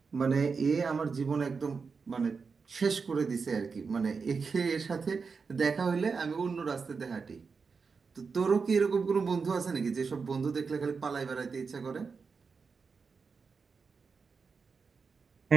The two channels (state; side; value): quieter; left; 5.1 dB